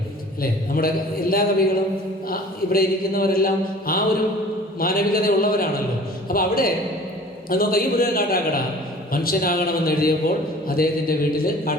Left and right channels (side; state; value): both; normal; correlation 0.47